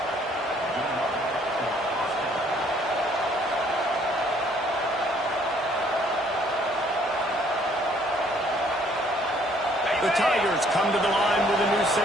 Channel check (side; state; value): both; normal; correlation 0.62